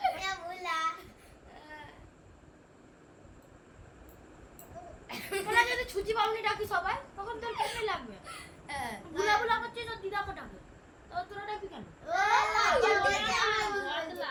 তোরা যদি ছুচি বাবুনি ডাকি সবাই তখন তোর কেমন লাগবে বুলা বুলা করছিস তোর দিদাকে ডাকে তো তোরা ডাকি কেন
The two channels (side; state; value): both; identical; correlation 1.00